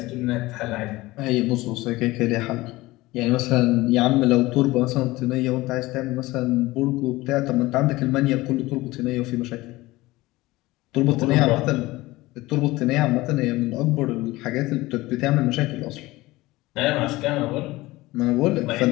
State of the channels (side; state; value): right; quieter; 19.5 dB